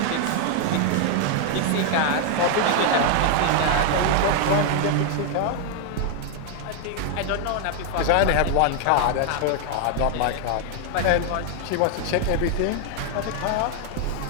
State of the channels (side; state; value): both; different; correlation 0.00